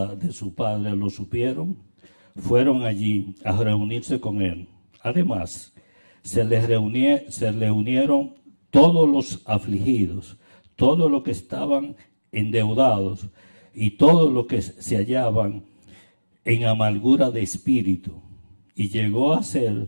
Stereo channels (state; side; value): inverted; both; correlation -1.00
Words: de su padre lo supieron, fueron allí a reunirse con él. Además, se le unieron todos los afligidos, todos los que estaban endeudados y todos los que se hallaban en amargura de espíritu, y llegó a